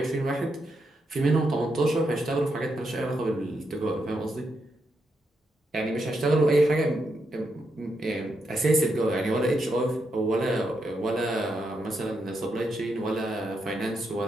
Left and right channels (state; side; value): normal; both; correlation 0.82